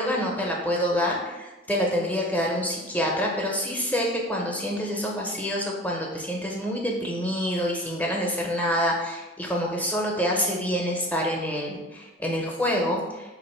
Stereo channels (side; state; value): both; normal; correlation 0.39